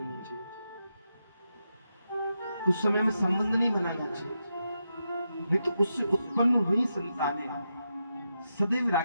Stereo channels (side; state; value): both; inverted; correlation -0.86